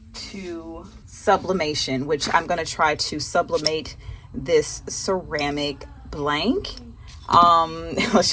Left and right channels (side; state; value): both; identical; correlation 1.00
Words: to sublimation, which I'm going to try to sublimate this ceramic blank. Let's